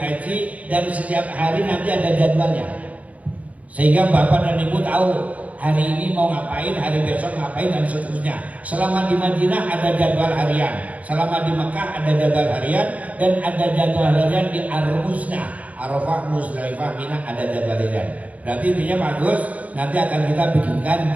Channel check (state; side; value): late; left; 0.069 ms